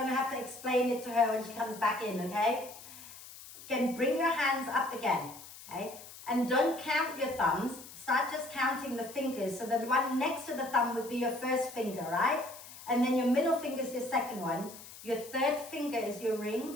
to have to explain it to her when she comes back in. Okay, again, bring your hands up again. Okay, and don't count your thumbs, start just counting the fingers. So the one next to the thumb would be your first finger, right? And then your middle finger is your second one. Your third finger is your ring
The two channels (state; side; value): noise; left; hiss, 16 dB below the sound